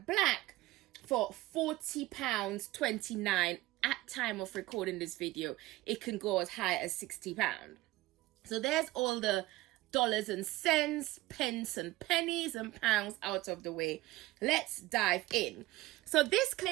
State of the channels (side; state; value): left; quieter; 18.1 dB